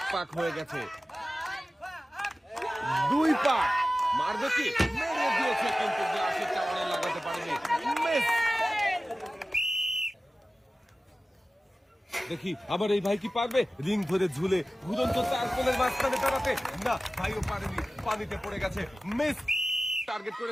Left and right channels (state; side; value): normal; both; correlation 0.96